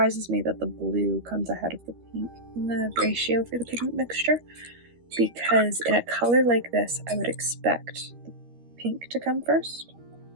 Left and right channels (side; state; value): left; late; 13 ms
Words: me that the blue comes ahead of the pink in the ratio for the pigment mixture, because in a color like this, I would expect the pink to come first,